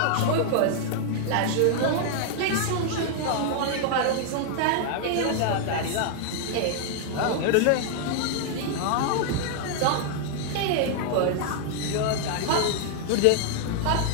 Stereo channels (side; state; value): both; different; correlation 0.00